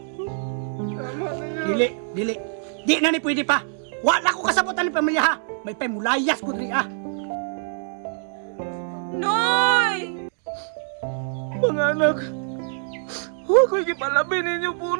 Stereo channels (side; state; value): left; silent; digital silence